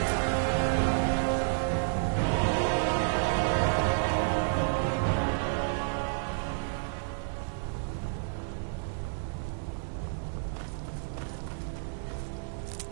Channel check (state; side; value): silent; left; 58 dB below the other